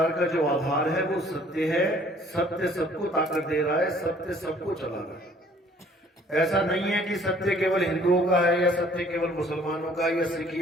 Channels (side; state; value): both; normal; correlation 0.57